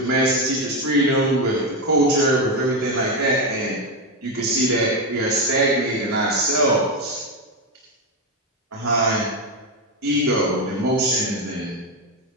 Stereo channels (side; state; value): both; normal; correlation 0.10